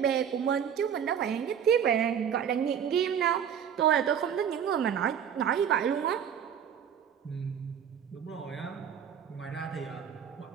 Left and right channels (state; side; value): quieter; left; 8.3 dB